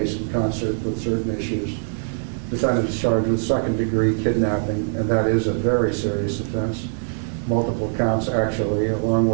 in concert with certain issues. Defendant is charged with second-degree kidnapping, and that is a very serious offense. Multiple counts, actually, along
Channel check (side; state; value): left; silent; 64 dB below the other